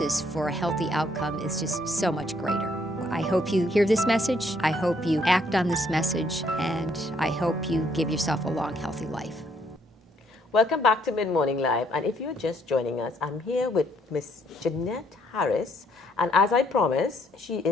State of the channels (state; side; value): normal; both; correlation 0.69